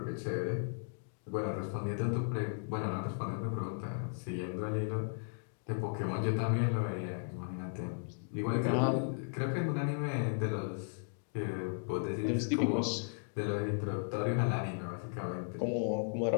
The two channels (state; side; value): silent; right; digital silence